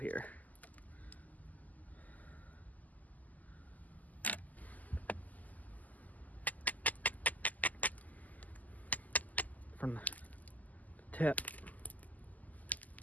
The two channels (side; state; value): right; late; 0.079 ms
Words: From the tip.